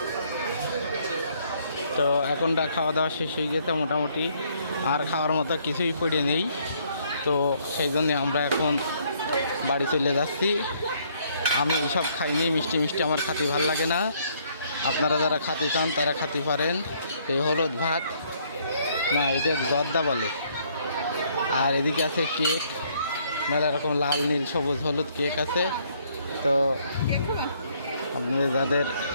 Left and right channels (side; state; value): both; inverted; correlation -0.66